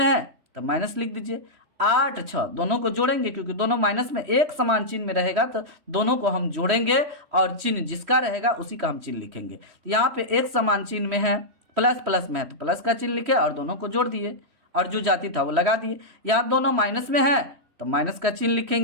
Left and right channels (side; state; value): left; late; 3.1 ms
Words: है तो माइनस लिख दीजिए। 8 6 दोनों को जोड़ेंगे, क्योंकि दोनों माइनस में एक समान चिन्ह में रहेगा तो दोनों को हम जोड़ेंगे और चिन्ह जिसका रहेगा उसी का हम चिन्ह लिखेंगे। तो यहाँ पे एक समान चिन्ह में है, प्लस प्लस में है तो प्लस का चिन्ह लिखे और दोनों को जोड़ दिए और जो जाति था वो लगा दिए। यहाँ दोनों माइनस में है तो माइनस का चिन्ह